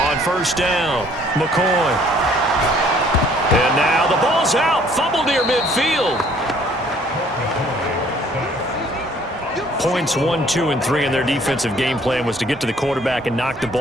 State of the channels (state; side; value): normal; both; correlation 0.59